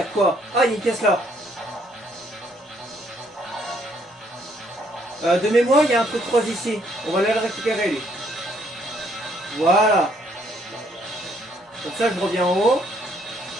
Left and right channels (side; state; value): both; normal; correlation 0.68